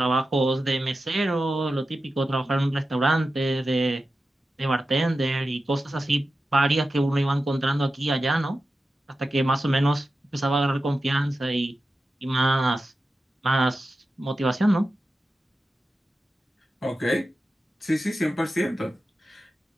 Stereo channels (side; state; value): both; normal; correlation 0.92